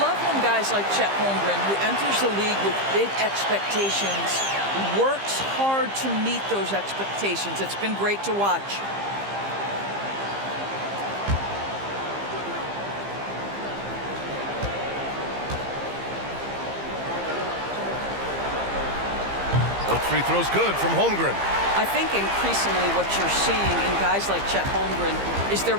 when guys like Chet Holmgren, who enters the league with big expectations, works hard to meet those expectations. It's been great to watch. Both free throws good from Holmgren. I think increasingly what you're seeing in guys like Chet Holmgren is they're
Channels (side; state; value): left; late; 15 ms